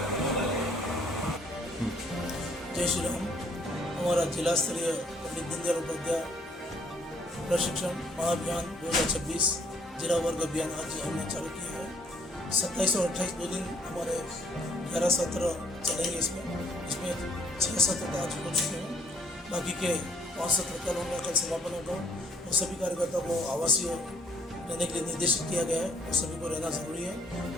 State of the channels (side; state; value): both; normal; correlation 0.64